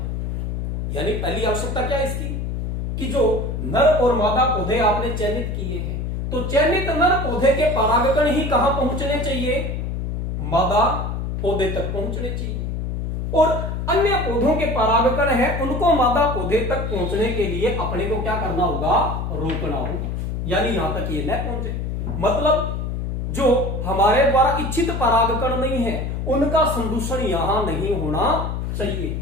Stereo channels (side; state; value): left; noise; hum, 3 dB below the sound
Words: यानी पहली आवश्यकता क्या है इसकी कि जो नर और मादा पौधे आपने चयनित किए हैं तो चयनित नर पौधे के परागकण ही कहां पहुंचने चाहिए, मादा पौधे तक पहुंचने चाहिए और अन्य पौधों के परागकण है उनको मादा पौधे तक पहुंचने के लिए अपने को क्या करना होगा, रोकना होगा। यानी यहां तक ये न पहुंचे, मतलब जो हमारे द्वारा इच्छित परागकण नहीं है उनका संदूषण यहां नहीं होना चाहिए।